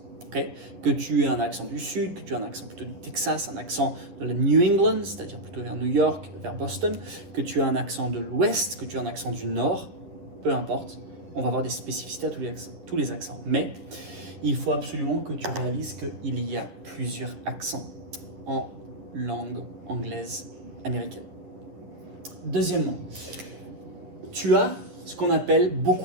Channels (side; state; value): left; late; 11 ms